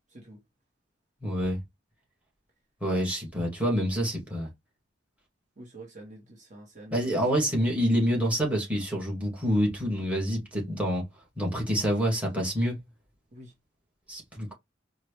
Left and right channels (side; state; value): both; normal; correlation 0.68